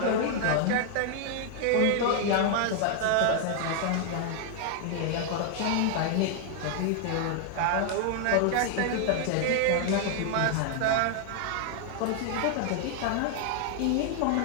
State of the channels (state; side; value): different; both; correlation 0.00